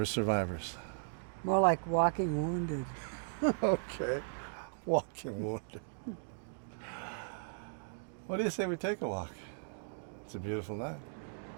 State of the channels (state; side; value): silent; left; digital silence